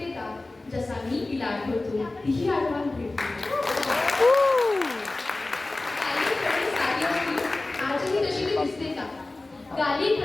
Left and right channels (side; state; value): right; quieter; 3.0 dB